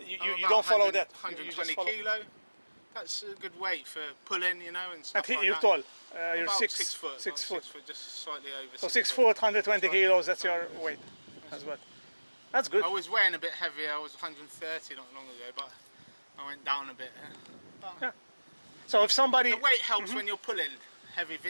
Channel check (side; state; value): both; inverted; correlation -1.00